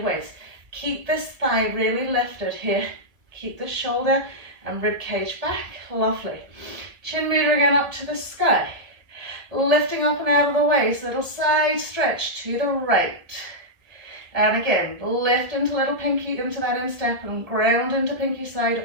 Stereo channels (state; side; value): late; left; 1.8 ms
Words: waist. Keep this thigh really lifted here. Keep the shoulder and rib cage back. Lovely. Chin mudra again up to the sky. Lifting up and out of the waist. Little side stretch to the right. And again, lift into little pinky into that instep and ground into pinky side